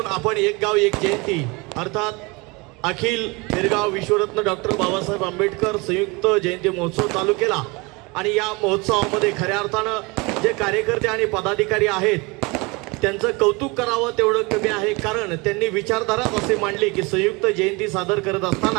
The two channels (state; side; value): quieter; left; 26.7 dB